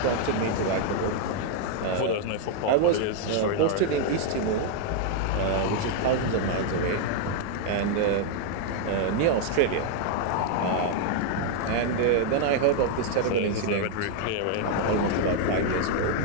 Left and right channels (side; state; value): both; different; correlation 0.00